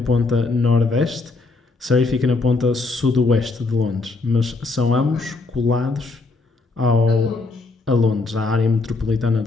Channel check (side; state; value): right; quieter; 3.7 dB